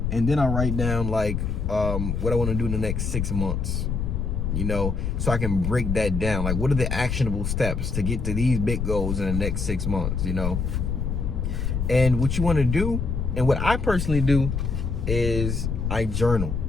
and then I write down like what I want to do in the next 6 months. So I can break that down. Like, what are the actionable steps to get to these big goals in the next 6 months, And what you want to do, and what I personally do, is I journal.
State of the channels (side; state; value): left; noise; rumble, 1 dB below the sound